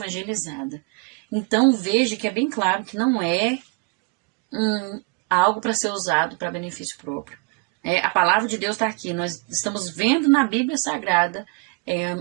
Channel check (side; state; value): left; quieter; 30.4 dB